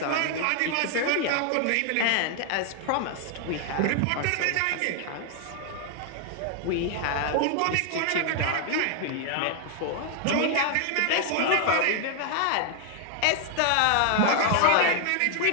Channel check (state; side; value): different; both; correlation 0.00